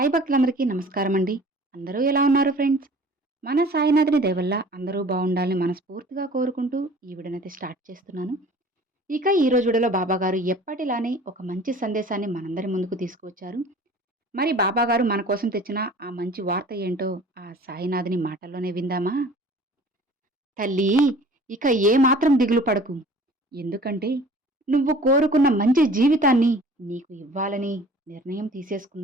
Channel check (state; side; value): normal; both; correlation 0.47